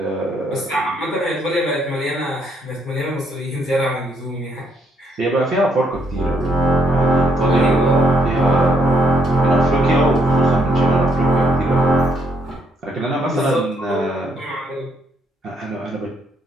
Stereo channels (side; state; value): both; normal; correlation 0.72